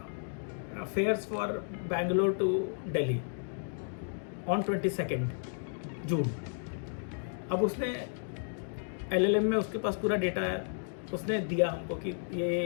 fares for Bangalore to Delhi on 22 June. अब उसने LLM में उसके पास पूरा डेटा है, उसने दिया हमको कि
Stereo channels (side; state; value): right; silent; digital silence